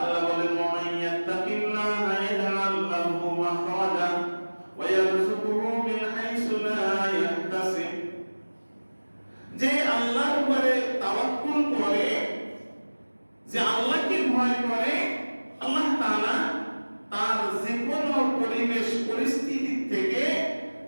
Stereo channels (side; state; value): both; inverted; correlation -1.00